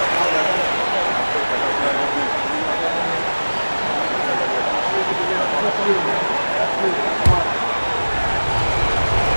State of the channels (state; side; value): inverted; both; correlation -1.00